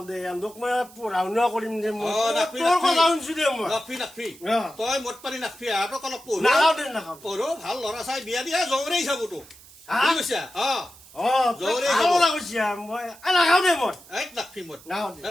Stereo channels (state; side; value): noise; right; hiss, 22 dB below the sound